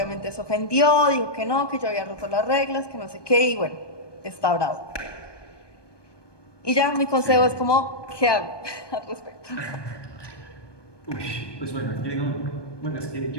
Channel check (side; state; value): right; late; 1.2 ms